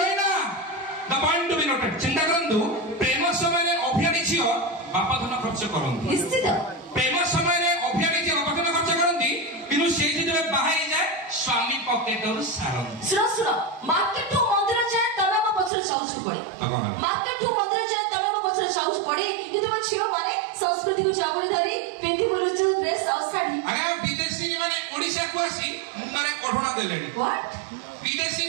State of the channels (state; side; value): drops out; left; at 15.7 s